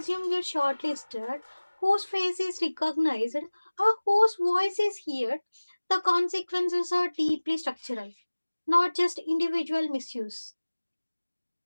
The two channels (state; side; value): inverted; both; correlation -1.00